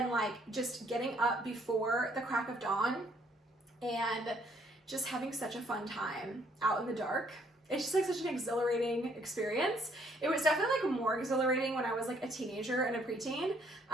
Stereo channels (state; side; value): normal; both; correlation 0.66